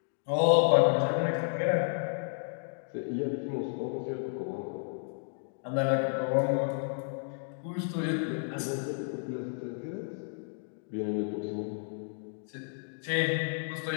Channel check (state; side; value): silent; right; digital silence